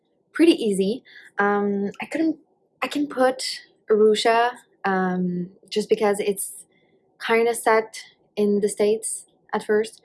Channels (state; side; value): identical; both; correlation 1.00